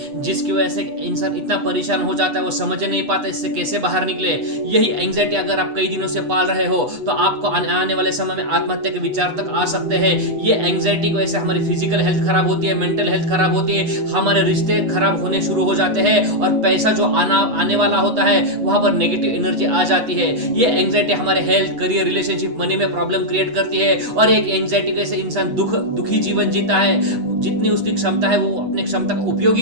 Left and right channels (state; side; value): late; left; 8.1 ms